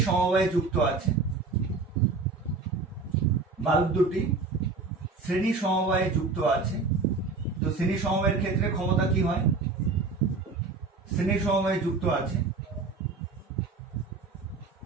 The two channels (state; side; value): quieter; left; 4.1 dB